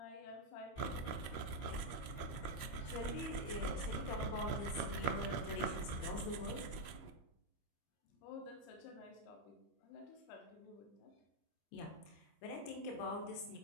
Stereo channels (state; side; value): late; right; 25 ms